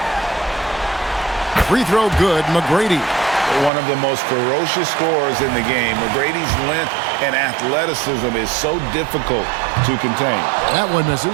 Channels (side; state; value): left; drops out; at 3.7 s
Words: Free throw good, McGrady. One of the most ferocious scorers in the game. McGrady's length and athleticism is so difficult to contain. That one